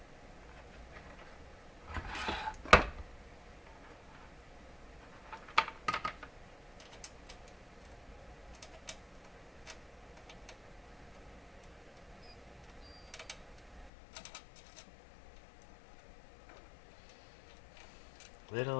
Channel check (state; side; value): drops out; right; at 13.9 s